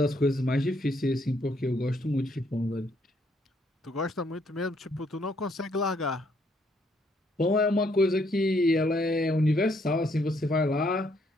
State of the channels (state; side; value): normal; both; correlation 0.70